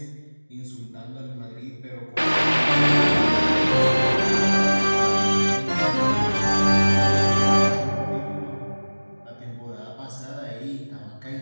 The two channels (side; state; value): both; inverted; correlation -1.00